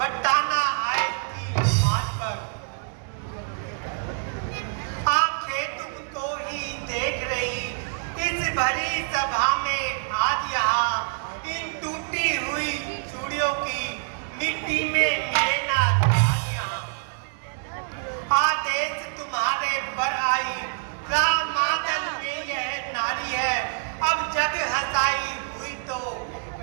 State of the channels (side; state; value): left; silent; digital silence